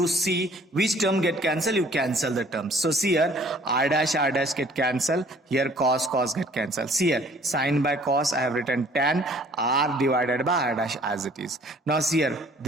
see which term get cancelled, you cancel the terms. So see here r dash get cancelled, here cos get cancelled. See here sin by cos, I have written tan, r divided by r dash as it is. Now see here,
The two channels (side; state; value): both; normal; correlation 0.56